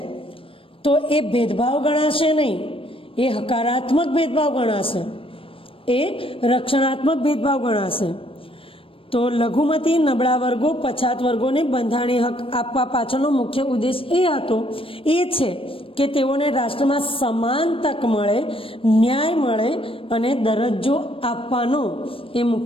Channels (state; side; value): late; right; 0.26 ms